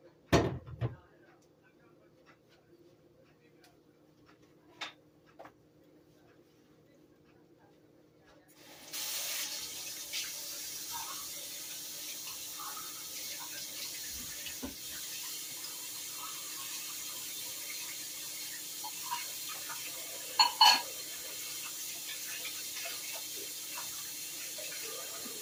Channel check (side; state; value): both; identical; correlation 1.00